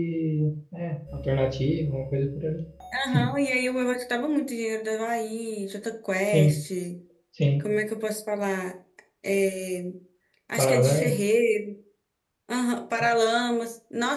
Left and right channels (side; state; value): both; identical; correlation 1.00